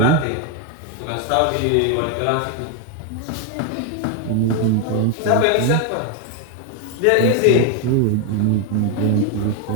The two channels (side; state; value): both; different; correlation 0.01